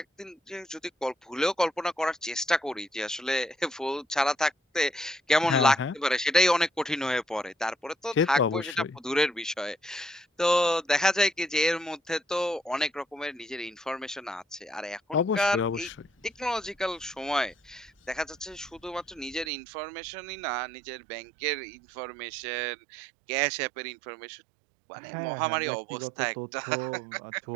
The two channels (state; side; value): drops out; left; at 19.5 s